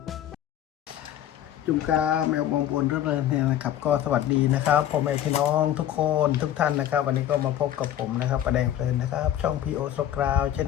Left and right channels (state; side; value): quieter; right; 11.3 dB